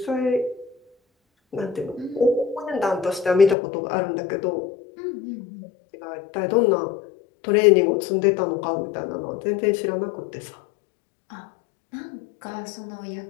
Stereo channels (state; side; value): drops out; right; at 3.6 s